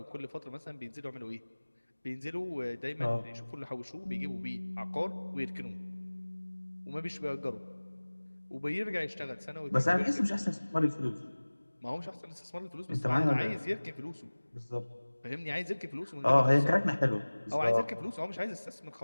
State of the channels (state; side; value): inverted; both; correlation -1.00